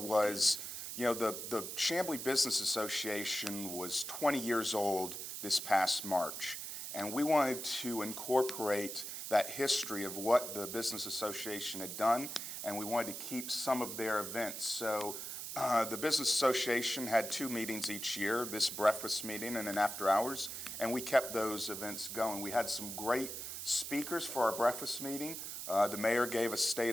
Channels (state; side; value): noise; right; hiss, 7 dB below the sound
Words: the Chamblee Business Association was 20 years old this past March. And we wanted to incorporate that history of what the Business Association had done, and we wanted to keep some of their events. So the Business Association had 2 meetings each year, this breakfast meeting and an after hours, and we kept those events going. We had some great speakers for our breakfast meeting. The mayor gave a